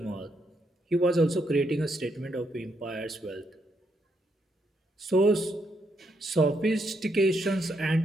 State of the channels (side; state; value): both; normal; correlation 0.77